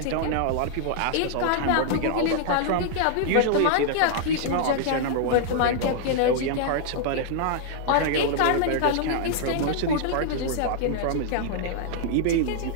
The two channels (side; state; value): both; different; correlation -0.01